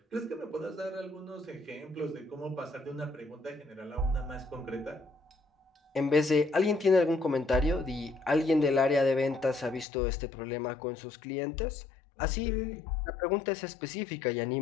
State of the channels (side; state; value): right; drops out; at 9.9 s